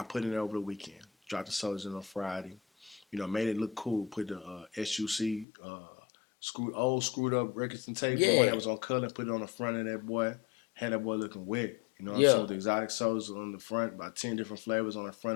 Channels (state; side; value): drops out; right; at 5.5 s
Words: put it in over the weekend. Dropped the soldiers in on Friday. made it look cool. Put the SUC screwed up records and tape, the one that was on color, and put it on the front of that boy. Had that boy looking wet. You know what I'm saying? With the exotic sodas on the front, about 10 different flavors on the